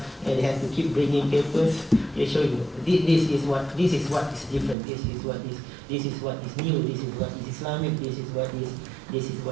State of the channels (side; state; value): left; drops out; at 4.8 s